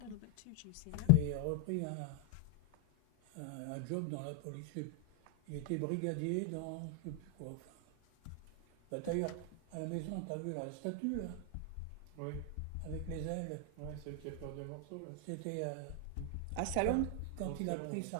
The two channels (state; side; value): different; both; correlation 0.01